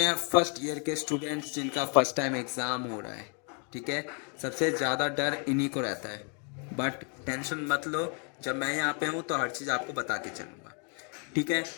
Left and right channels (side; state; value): right; quieter; 37.6 dB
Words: फर्स्ट ईयर के स्टूडेंट्स जिनका फर्स्ट टाइम एग्ज़ाम हो रहा है, ठीक है। सबसे ज़्यादा डर इन्हीं को रहता है, बट टेंशन मत लो, जब मैं यहाँ पे हूँ तो हर चीज़ आपको बता के चलूँगा, ठीक है।